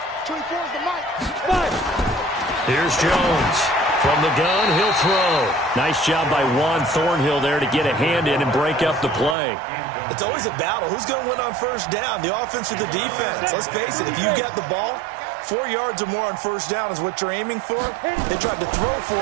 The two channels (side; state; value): left; drops out; at 9.3 s